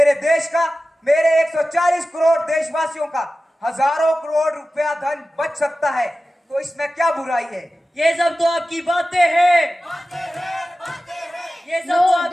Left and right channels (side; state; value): both; normal; correlation 0.95